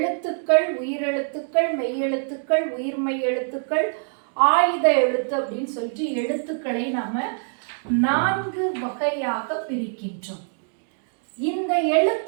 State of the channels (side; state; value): left; silent; digital silence